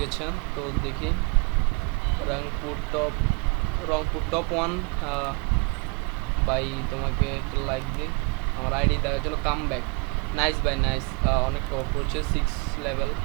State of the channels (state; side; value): quieter; left; 30.7 dB